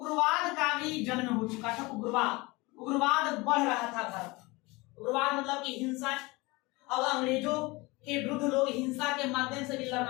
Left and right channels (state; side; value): quieter; right; 23.7 dB